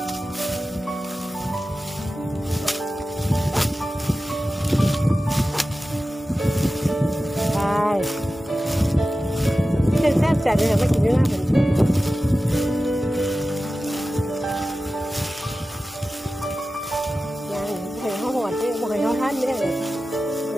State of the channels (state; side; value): normal; both; correlation 0.95